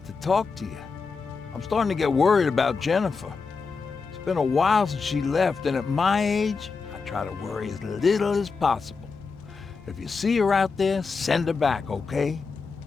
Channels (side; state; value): right; quieter; 4.8 dB